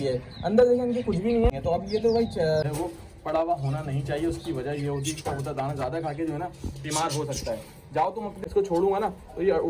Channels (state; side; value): identical; both; correlation 1.00